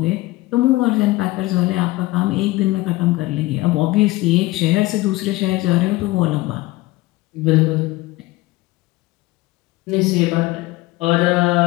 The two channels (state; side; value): quieter; right; 19.5 dB